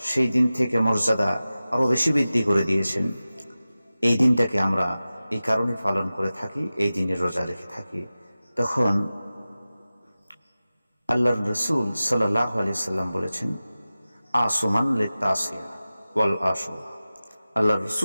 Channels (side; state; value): both; inverted; correlation -0.96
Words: সেই দিন থেকে মর্যাদা আরো বেশি বৃদ্ধি করে দিয়েছেন, এই দিনটাকে আমরা এই কারণে পালন করে থাকি, এই দিনে রোজা রেখে থাকি। তখন আল্লাহর রাসূল সাল্লাল্লাহু আলাইহি সাল্লাম বলেছেন, আসমান লিতাসিয়া ওয়াল আশুরা। আল্লাহ